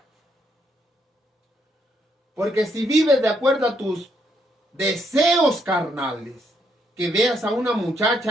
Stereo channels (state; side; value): normal; both; correlation 0.74